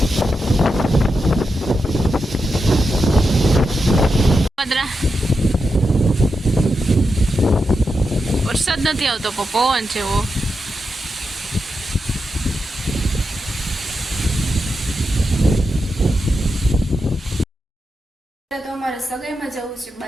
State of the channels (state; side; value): normal; both; correlation 0.87